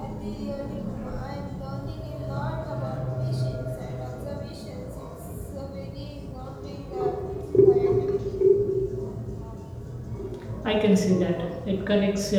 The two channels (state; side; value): identical; both; correlation 1.00